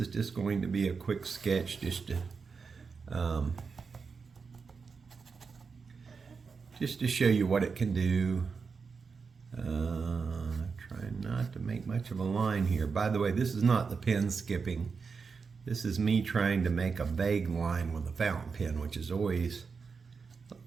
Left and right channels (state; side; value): quieter; left; 5.2 dB